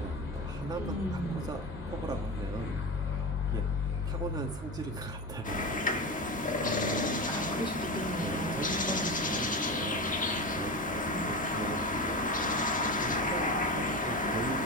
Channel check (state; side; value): normal; both; correlation 0.22